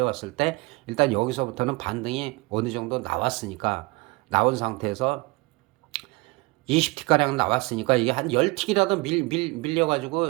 때 일단 여기서부터는 반등이 어느 정도 나왔으니까 나온 상태에서 20티가량 나왔으니까 이게 한 10틱이라도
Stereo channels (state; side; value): quieter; left; 24.7 dB